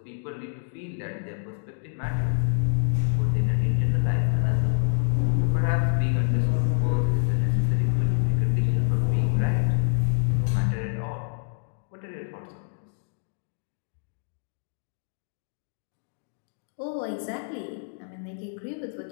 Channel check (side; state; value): right; silent; 61 dB below the other